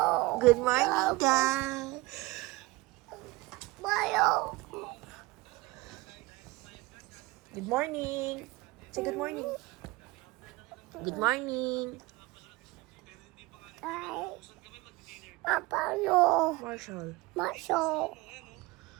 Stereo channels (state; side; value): quieter; left; 21.9 dB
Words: Good morning, guys. Bayo. Good morning. Say good morning. Good morning. Ay. Paano? Marshall. Maso.